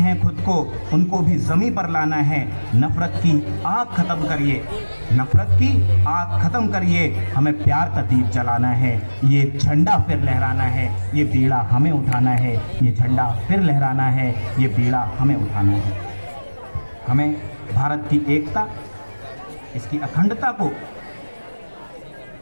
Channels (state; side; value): inverted; both; correlation -1.00